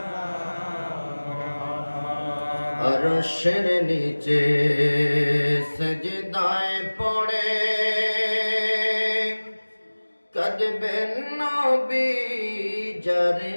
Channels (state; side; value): inverted; both; correlation -1.00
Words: আরশের নিচে সজদায় পড়ে কাঁদবেন নবী যারে